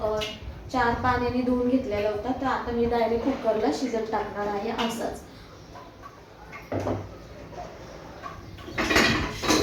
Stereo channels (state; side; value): identical; both; correlation 1.00